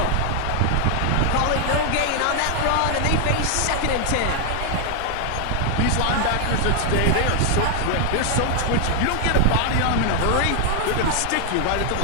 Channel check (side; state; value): both; different; correlation 0.00